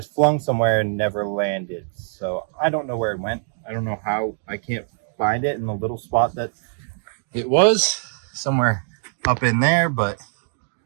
flung somewhere and never landed. So I don't know where it went. I don't know how. I can't find it in the little spot that it was, somewhere up in there. But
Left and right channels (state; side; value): silent; left; digital silence